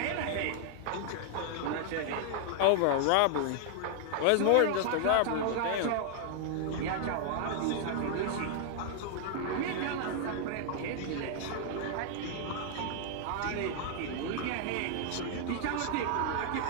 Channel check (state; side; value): different; both; correlation 0.00